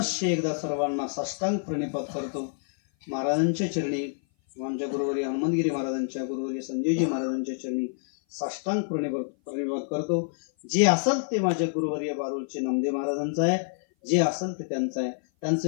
एकदा सर्वांना साष्टांग प्रणिपात करतो. महाराजांच्या चरणी, आमच्या गुरुवर्य हनुमंतगिरी महाराजांच्या, गुरुवर्य संजयजी महाराजांच्या चरणी साष्टांग प्रणिपात करतो. जे असेल ते माझे गुरुवर्य बारूळचे नामदेव महाराजांचं आहे, जे असेल ते त्यांचं आहे.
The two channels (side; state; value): right; silent; 56 dB below the other